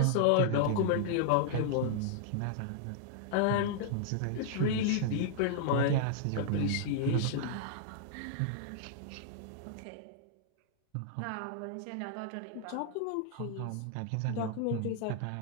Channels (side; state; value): both; different; correlation -0.01